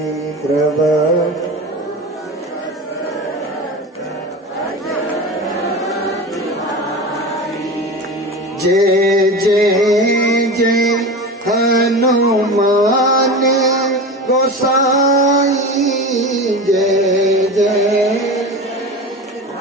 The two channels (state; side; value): normal; both; correlation 0.29